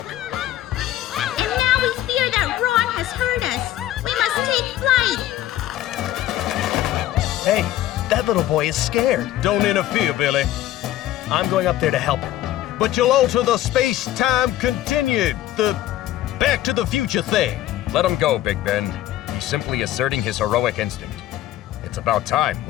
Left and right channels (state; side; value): quieter; right; 13.6 dB